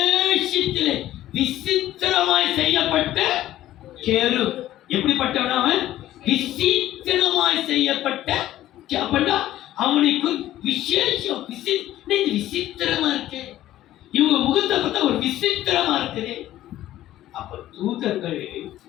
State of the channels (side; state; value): right; quieter; 13.8 dB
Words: விசித்திரமாய் செய்யப்பட்ட கேரு. எப்படிப்பட்டவனாக? விசித்திரமாய் செய்யப்பட்ட. அப்படின்னா அவனுக்கு விசேஷம் விசித்திரமா இருக்கு. இவங்க முகத்தை பார்த்தா ஒரு விசித்திரமா இருக்குது. அப்ப தூதர்கள்